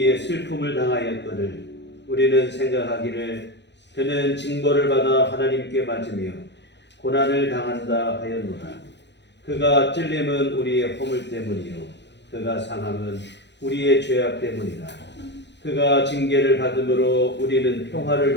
슬픔을 당하였거늘 우리는 생각하기를 그는 징벌을 받아 하나님께 맞으며 고난을 당한다 하였노라. 그가 찔림은 우리의 허물 때문이요 그가 상함은 우리의 죄악 때문이라. 그가 징계를 받음으로 우리는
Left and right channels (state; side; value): late; right; 0.51 ms